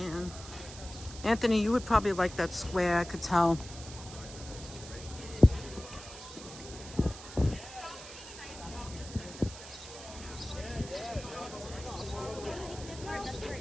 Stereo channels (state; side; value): noise; right; hiss, 14 dB below the sound